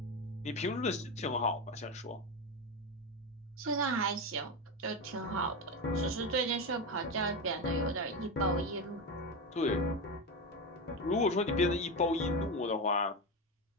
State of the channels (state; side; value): normal; both; correlation 0.17